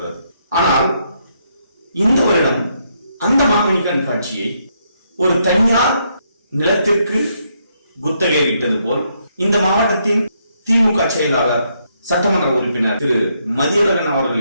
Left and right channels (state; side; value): inverted; both; correlation -0.76